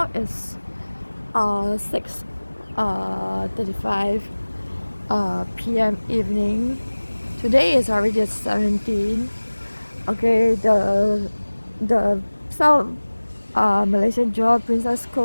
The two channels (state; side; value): inverted; both; correlation -1.00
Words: it's 6:35 p.m. evening. Today is already 17. Okay, the South Malaysian Johor Princess